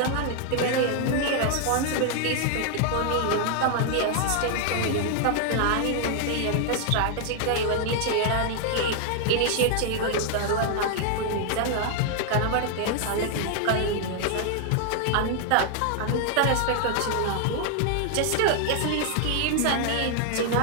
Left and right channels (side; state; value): both; different; correlation 0.00